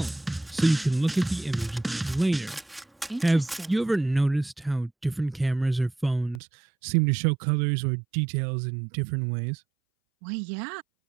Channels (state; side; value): drops out; left; at 6.4 s